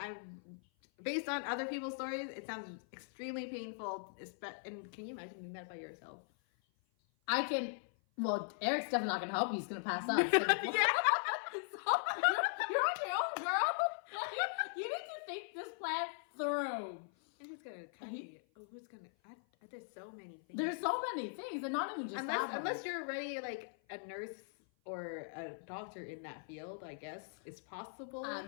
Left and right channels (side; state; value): right; silent; 51 dB below the other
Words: based on other people's stories. It sounds extremely painful. And can you imagine doing that by yourself? I can. Well, Eric's definitely not gonna help you. He's gonna pass out. So, Yeah. you're on your own, girl. You need to think this plan through. And who's gonna cut you? Oh, who's gonna? There's so many things. There's so many things, and not even just that. Unless you're already like a nurse or a doctor in that field, I guess it's possible.